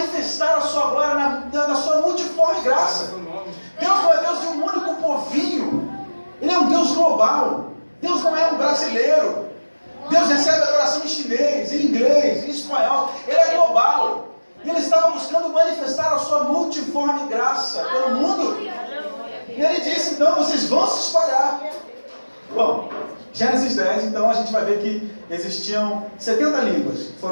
a sua glória na sua multiforme graça. Deus não é Deus de um único povinho. Ele é um Deus global. Deus não é um brasileiro. Deus recebe adoração em chinês, em inglês, em espanhol. Ele é global. E ele estava buscando manifestar a sua multiforme graça pelo mundo. E ele disse, então, vocês vão se espalhar. Bom, Gênesis 10, então, a gente vai ver que existiam 70 línguas que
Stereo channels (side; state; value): both; inverted; correlation -1.00